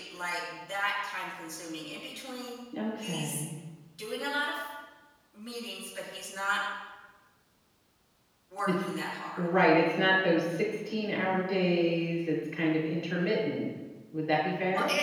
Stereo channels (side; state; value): both; identical; correlation 1.00